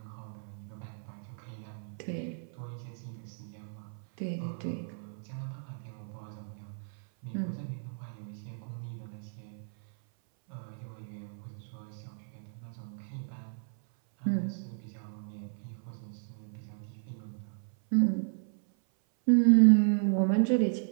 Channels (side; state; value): left; silent; 55 dB below the other